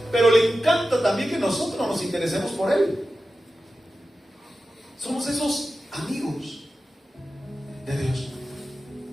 pero le encanta también que nosotros nos interesemos por Él. Somos esos amigos de Dios.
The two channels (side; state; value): both; normal; correlation 0.93